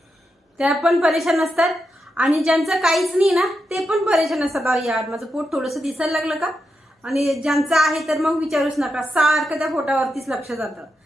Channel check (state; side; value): normal; both; correlation 0.86